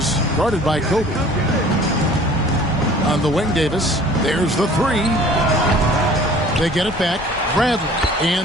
guarded by Kobe. On the wing, Davis. There's the 3. They get it back. Bradley.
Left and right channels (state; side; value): normal; both; correlation 0.49